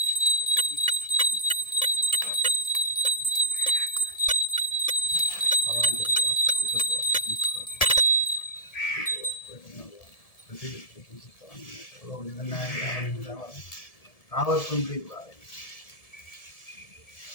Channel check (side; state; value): right; late; 1.7 ms